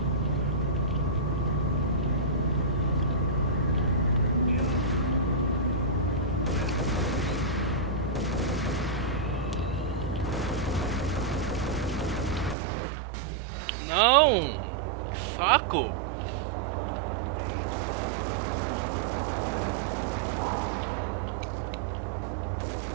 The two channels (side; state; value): left; drops out; at 12.6 s